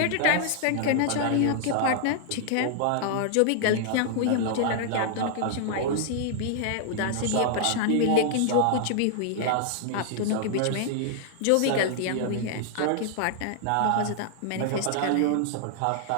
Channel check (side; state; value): both; different; correlation -0.01